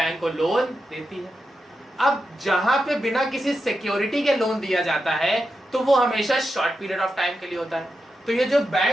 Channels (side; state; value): both; normal; correlation 0.88